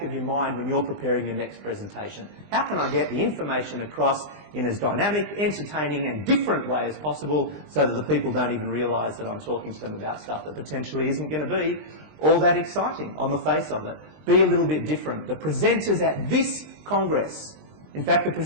of your mind when you're preparing your next presentation. How can I get the information across in as dynamic, entertaining and different way as possible so that the people don't even realise that I'm talking to them about stuff that potentially isn't going to be all that exciting on the face of it. Be a little bit different. The presenters at this Congress, in fact the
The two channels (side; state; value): left; late; 20 ms